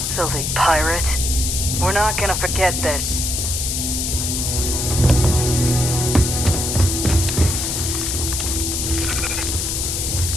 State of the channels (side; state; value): left; noise; hiss, 1 dB below the sound